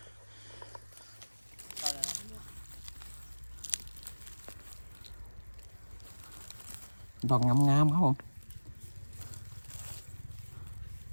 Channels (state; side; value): inverted; both; correlation -1.00